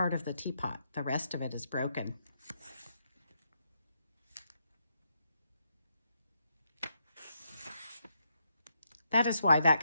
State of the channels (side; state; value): both; inverted; correlation -0.79